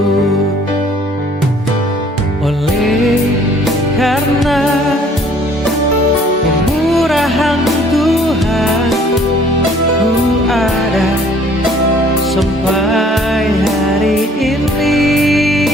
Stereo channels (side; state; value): both; normal; correlation 0.57